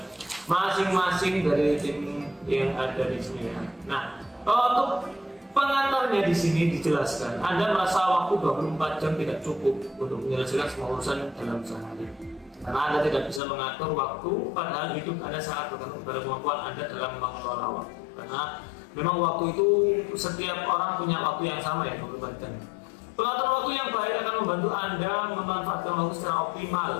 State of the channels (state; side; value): drops out; right; at 13.4 s